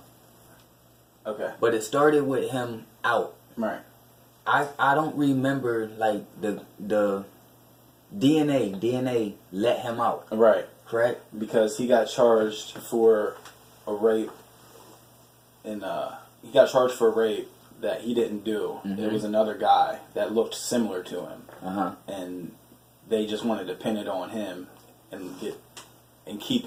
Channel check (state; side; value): identical; both; correlation 1.00